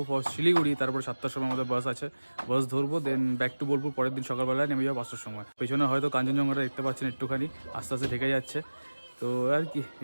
ফর শিলিগুড়ি। তারপর 7টার সময় আমাদের বাস আছে, বাস ধরবো, দেন ব্যাক টু বোলপুর। পরের দিন সকালবেলায় নেমে যাবো 5টার সময়। পেছনে হয়তো কাঞ্চনজঙ্ঘাটা দেখতে পাচ্ছেন একটুখানি আস্তে আস্তে ঢেকে যাচ্ছে। তো আর কি,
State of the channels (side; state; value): both; inverted; correlation -1.00